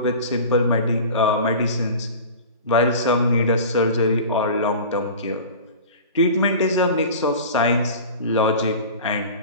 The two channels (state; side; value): inverted; both; correlation -0.37